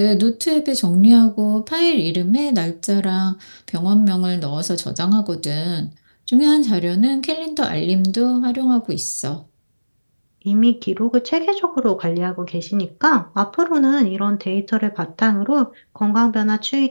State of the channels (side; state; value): both; inverted; correlation -1.00